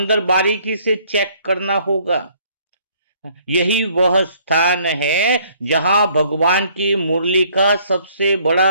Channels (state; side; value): inverted; both; correlation -0.62